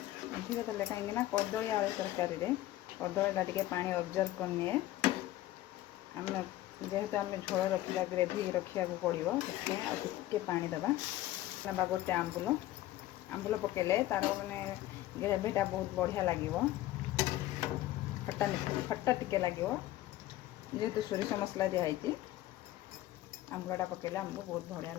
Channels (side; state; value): right; quieter; 15.2 dB